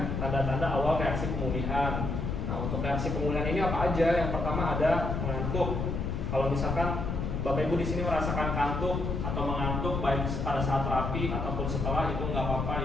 tanda-tanda awal reaksi pemulihan. Nah, untuk reaksi pemulihan ini apa aja? Yang pertama ada mengantuk. Kalau misalkan Bapak Ibu di sini merasakan kantuk atau mengantuk baik pada saat terapi ataupun setelah, itu nggak apa-apa,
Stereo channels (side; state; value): left; noise; rumble, 2 dB below the sound